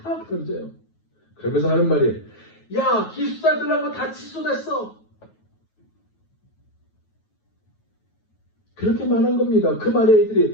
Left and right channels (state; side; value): late; right; 9.3 ms